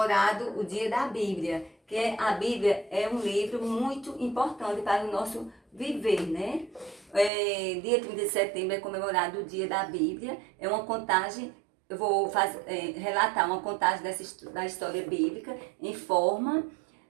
o dia da Bíblia. Que a Bíblia é um livro muito importante para o nosso viver, né? Dia 30 de setembro é comemorado o dia da Bíblia. É uma contagem. Eu vou relatar uma contagem da história bíblica em forma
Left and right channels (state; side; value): drops out; left; at 7.3 s